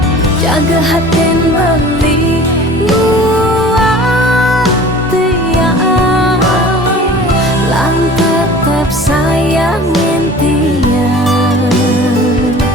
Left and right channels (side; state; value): both; normal; correlation 0.43